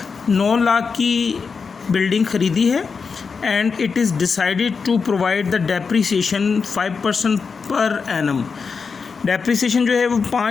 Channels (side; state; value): right; quieter; 5.3 dB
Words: 9 lakh की बिल्डिंग ख़रीदी है। And it is decided to provide the depreciation 5% per annum. Depreciation जो है वो